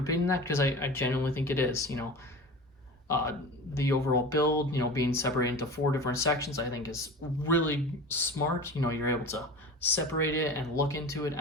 that because I genuinely think it is. You know, the overall build, you know, being separated into 4 different sections, I think is really smart. You know, you're able to separate it and look into it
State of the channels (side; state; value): both; normal; correlation 0.34